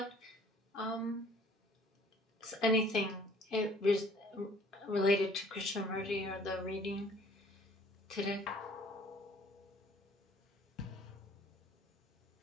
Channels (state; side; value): normal; both; correlation 0.55